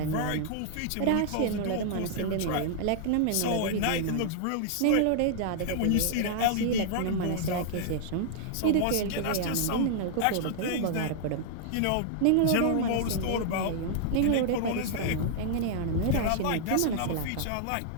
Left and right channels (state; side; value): different; both; correlation -0.01